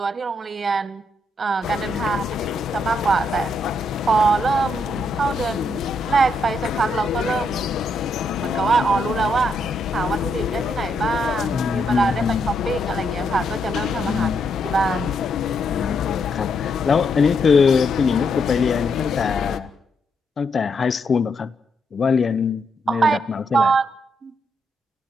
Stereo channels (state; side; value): normal; both; correlation 0.77